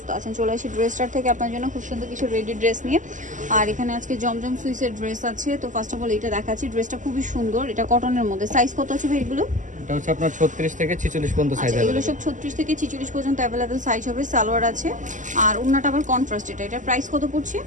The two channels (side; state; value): left; late; 0.37 ms